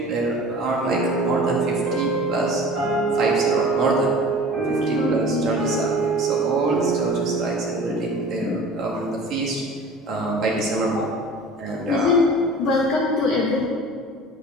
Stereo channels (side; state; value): both; normal; correlation 0.41